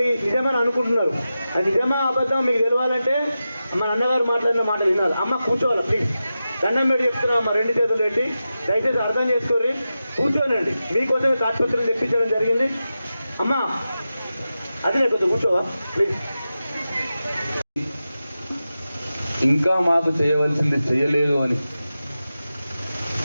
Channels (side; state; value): both; inverted; correlation -0.92